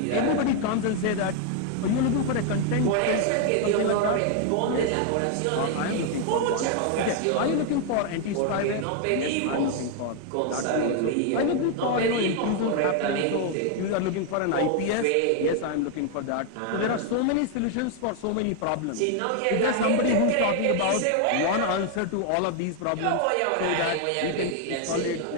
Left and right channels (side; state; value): both; different; correlation 0.00